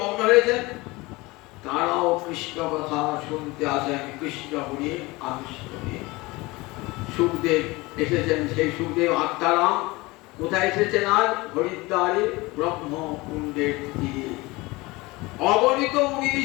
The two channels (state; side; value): quieter; right; 22.4 dB